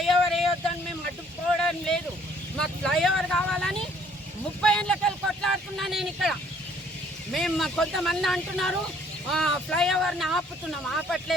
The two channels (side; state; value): both; normal; correlation 0.61